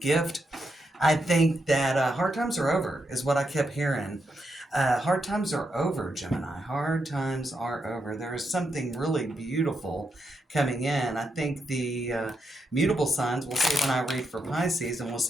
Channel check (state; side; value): normal; both; correlation 0.83